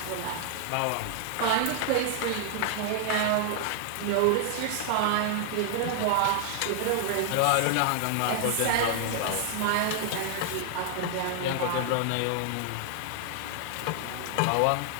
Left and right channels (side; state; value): both; different; correlation 0.00